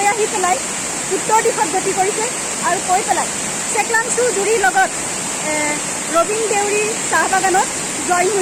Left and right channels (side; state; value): both; identical; correlation 1.00